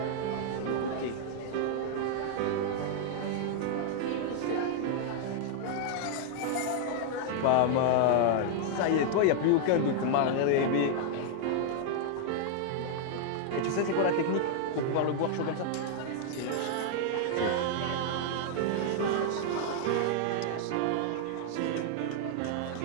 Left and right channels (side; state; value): both; different; correlation 0.00